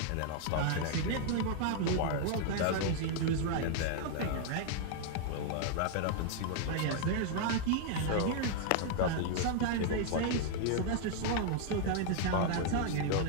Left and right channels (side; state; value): both; different; correlation 0.00